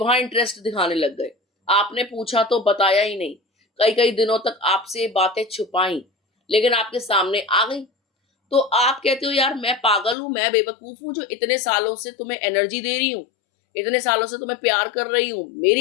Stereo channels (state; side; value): drops out; right; at 10.2 s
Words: इंटरेस्ट दिखाने लग गए। आपने पूछा तो बताया ही नहीं, कई कई दिनों तक आपसे बातें छुपाई, लेकिन आपके सामने आ गई। तो आप कहते हो यार मैं पागल हूं, मैं बेवकूफ हूं जो इतने सालों से तुम्हें एनर्जी दे रही हूं, इतने सालों से तुम्हें प्यार कर रही हूं, मेरी